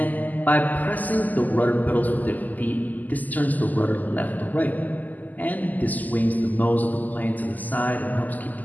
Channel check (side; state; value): right; late; 0.082 ms